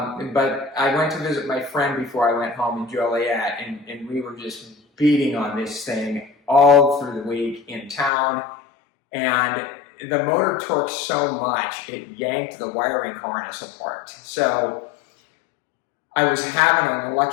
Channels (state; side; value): drops out; right; at 8.1 s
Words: I went to visit my friend before I went home in Joliet, and we were just beating on this thing all through the week in town, and the motor torqued so much it yanked the wiring harness apart. So I was having an